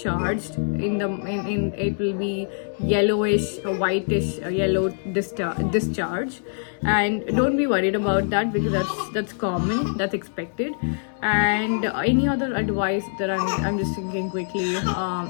in it will be yellowish or whitish yellow discharge, and don't be worried about that, because that's common, that's expected. And any other advice that I'm just thinking quickly,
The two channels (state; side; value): silent; right; digital silence